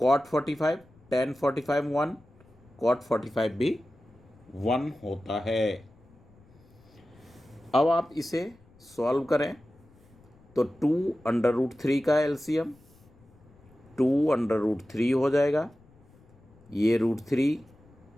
45 tan 45 1 cot 45 भी 1 होता है। अब आप इसे सॉल्व करें तो 2√3 का एलसीएम 2√3 हो जाएगा, ये √3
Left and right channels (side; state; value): left; noise; rumble, 28 dB below the sound